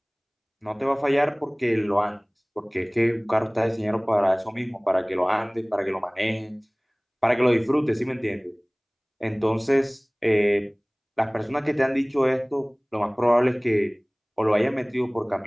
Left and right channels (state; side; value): identical; both; correlation 1.00